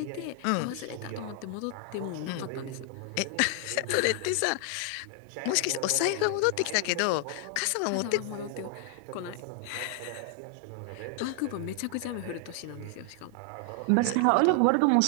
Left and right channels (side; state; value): both; different; correlation 0.00